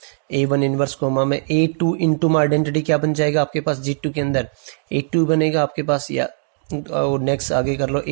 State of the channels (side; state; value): left; silent; digital silence